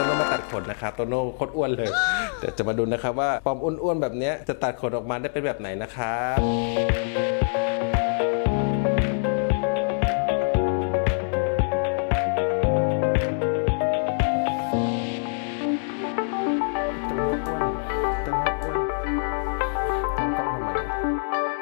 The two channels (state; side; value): silent; right; digital silence